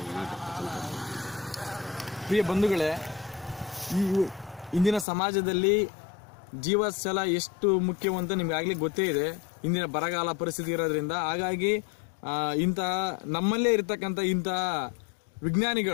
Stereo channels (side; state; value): right; drops out; at 5.1 s